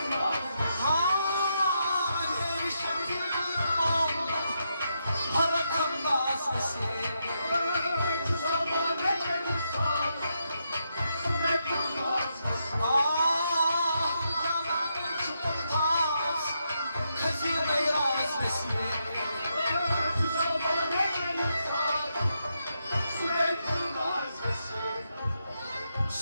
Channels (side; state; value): both; inverted; correlation -0.81